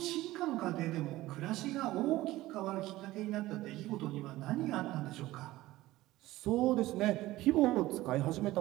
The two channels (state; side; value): quieter; left; 17.1 dB